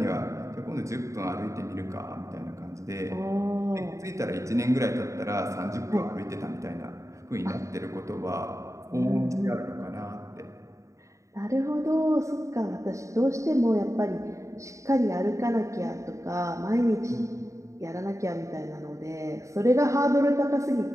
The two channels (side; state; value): left; late; 0.15 ms